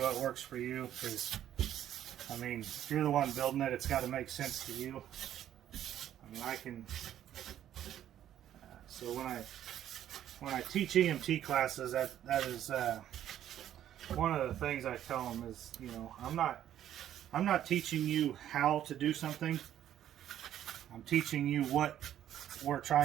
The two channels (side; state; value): left; quieter; 11.2 dB